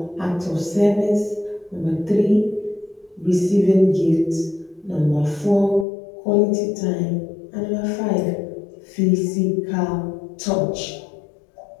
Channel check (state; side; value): drops out; right; at 5.9 s